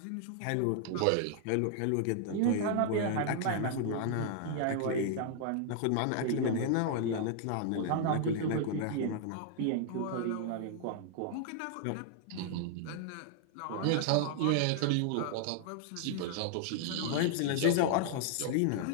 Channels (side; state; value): both; different; correlation -0.01